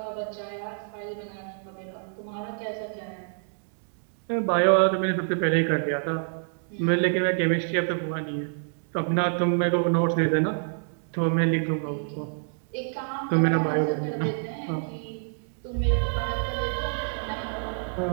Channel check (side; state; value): left; silent; digital silence